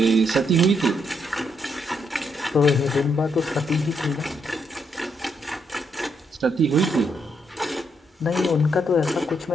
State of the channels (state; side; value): normal; both; correlation 0.76